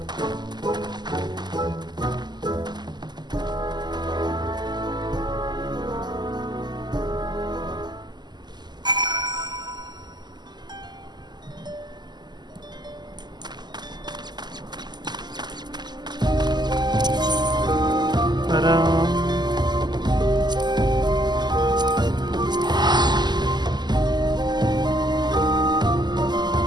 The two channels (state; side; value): late; left; 0.21 ms